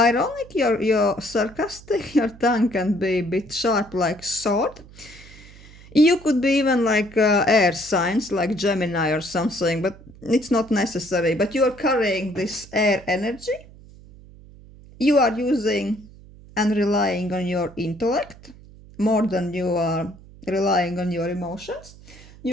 you're sarcastic, your tongue can be a bit sharp like sword. You could be even like air signs, like Gemini or something, but it's not necessary. But you are carrying this air energy. You are using and relying on your intellect more than you are relying on your emotions.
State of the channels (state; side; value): noise; right; hum, 21 dB below the sound